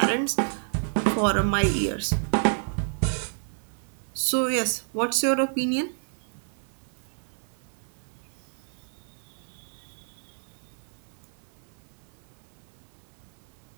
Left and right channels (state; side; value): silent; left; 56 dB below the other